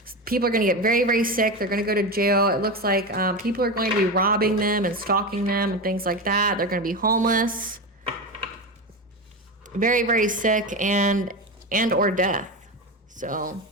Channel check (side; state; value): both; normal; correlation 0.19